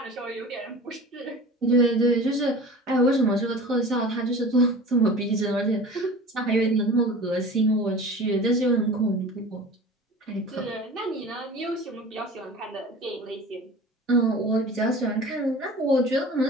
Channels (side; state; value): both; normal; correlation 0.38